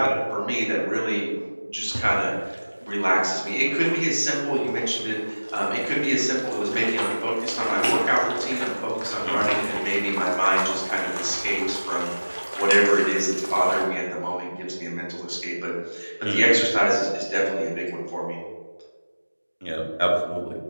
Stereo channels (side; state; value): both; inverted; correlation -1.00